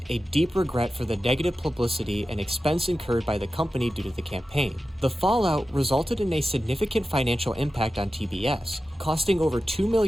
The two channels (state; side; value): normal; both; correlation 0.93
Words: a deep regret for the negative publicity and expense incurred by the company due to the campaign. The fallout resulted in a significant financial impact on TBS, costing over $2